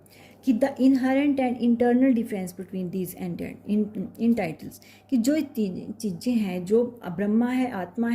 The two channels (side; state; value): both; identical; correlation 1.00